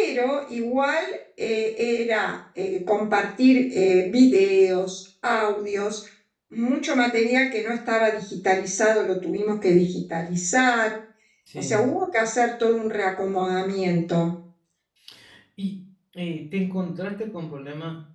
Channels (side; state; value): both; identical; correlation 1.00